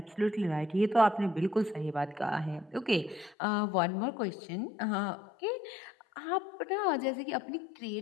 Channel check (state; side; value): drops out; right; at 3.4 s